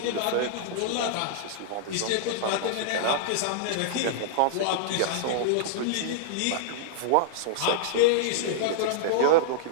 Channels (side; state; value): both; different; correlation -0.02